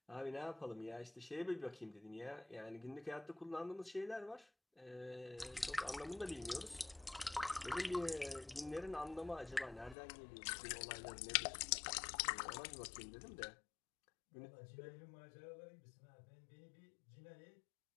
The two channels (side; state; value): right; drops out; at 10.0 s